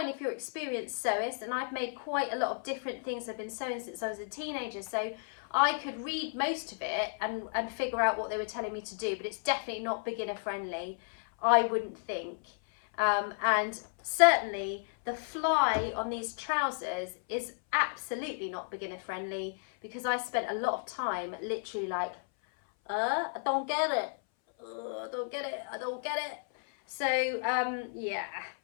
if you're experienced sewist, and I've made quite a lot of different things. I've been sewing since I was a teenager, so I could read most of it and figure out what they were telling me to do, but it's definitely not beginner friendly, I wouldn't think. And certainly the fly on these trousers is absolutely not beginner friendly, because I spent a lot of time literally like, I don't get it, I don't get it, I don't get it. So yeah,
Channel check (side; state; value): right; silent; 56 dB below the other